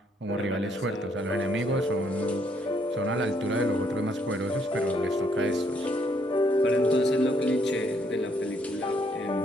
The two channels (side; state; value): both; normal; correlation 0.70